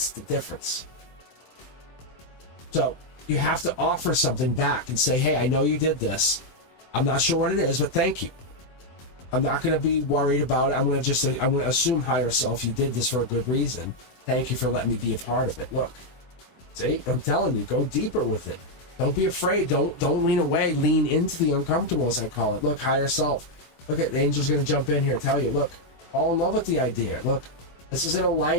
the difference. So you have to offer something back and say, hey, I know you did this. I'm not sure what it is, but thank you. I'm not going to be worried about it. I'm going to assume higher self, you did this for a good reason. Thank you for letting me be a part of it. Look, see, I'm telling you, go deeper with it. Don't be afraid. Don't lean away. Lean into the uncomfortable, as I call it. Look, higher self. Look at the angel's going to jump in here, tell you, look, fall in love with the idea. Look, this is in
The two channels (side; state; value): right; late; 23 ms